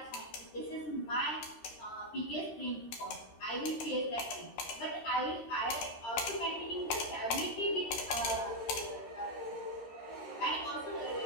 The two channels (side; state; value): right; late; 13 ms